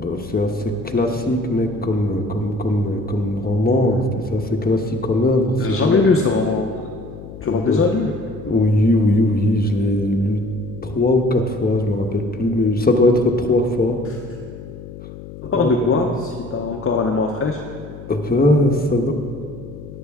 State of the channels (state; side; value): noise; left; hum, 14 dB below the sound